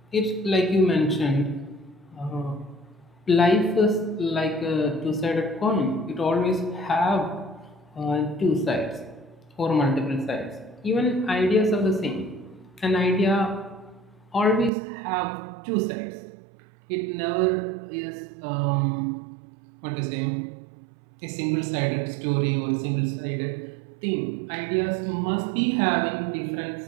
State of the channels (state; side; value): drops out; left; at 14.7 s